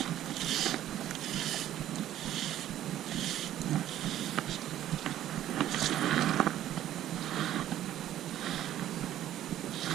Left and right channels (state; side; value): quieter; left; 12.3 dB